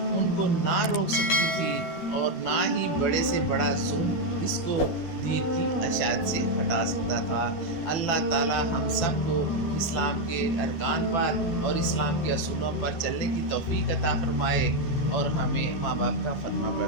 کو نہ روک سکتی تھی، اور نہ ہی بڑے سے بڑا ظلم اس کو دین کی اشاعت سے ہٹا سکتا تھا۔ اللہ تعالی ہم سب کو اسلام کے ارکان پر اور اسلام کے اصولوں پر چلنے کی توفیق عطا فرمائے، اور ہمیں ماں باپ کا فرما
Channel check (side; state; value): right; late; 12 ms